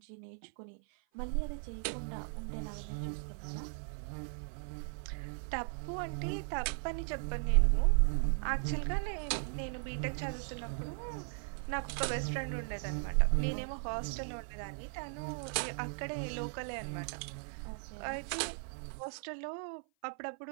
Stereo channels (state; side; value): silent; left; 53 dB below the other